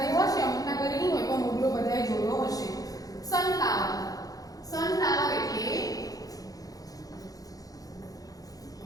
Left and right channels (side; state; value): right; late; 0.18 ms